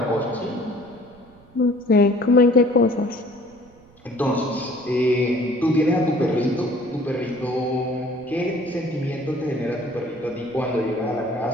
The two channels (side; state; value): right; noise; rumble, 27 dB below the sound